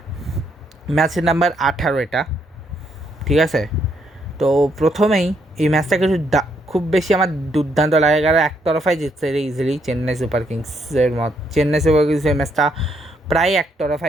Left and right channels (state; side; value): normal; both; correlation 0.74